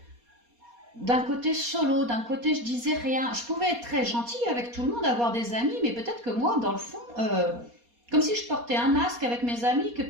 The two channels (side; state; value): left; late; 4.2 ms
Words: d'un côté solo, d'un côté je disais rien. Je pouvais être très gentille avec tout le monde, avoir des amis, mais peut-être que moi, dans le fond... comme si je portais un masque avec mes amis, que